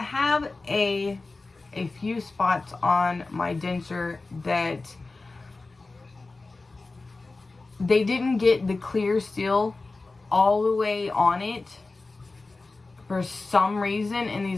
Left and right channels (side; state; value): right; quieter; 3.5 dB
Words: have a few spots on my denture that they didn't get the clear seal all the way on it for some reason in